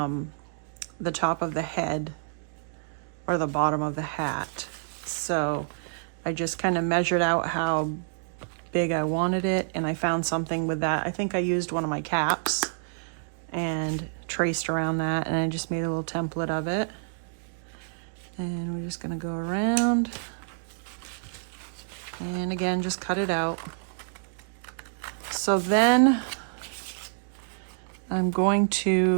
of the head, or the bottom of the hat. So I just kind of measured out how big I wanted it, and I found something with that. I think I used one of my caps and traced around that, and I just made a little template of it. And we're just gonna go around, and again, just cut it out. So then I'm going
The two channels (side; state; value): left; silent; digital silence